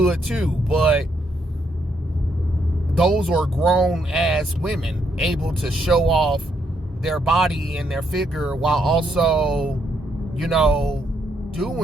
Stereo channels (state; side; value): normal; both; correlation 0.75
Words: too. But those are grown ass women able to show off their body and their figure while also, you know,